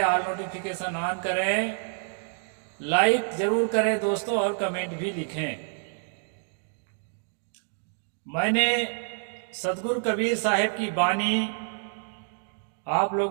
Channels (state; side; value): silent; left; 60 dB below the other